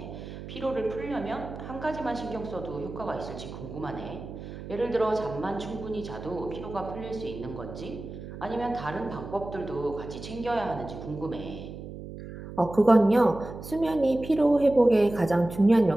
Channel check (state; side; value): noise; right; hum, 11 dB below the sound